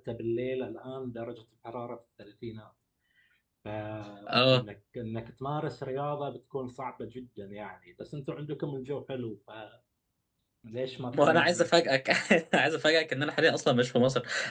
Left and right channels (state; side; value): identical; both; correlation 1.00